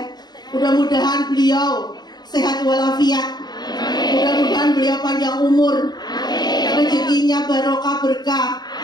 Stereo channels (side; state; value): right; late; 0.20 ms